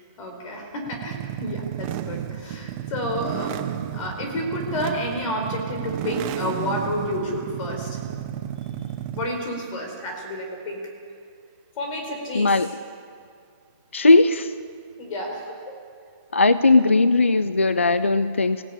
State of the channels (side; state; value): both; inverted; correlation -0.68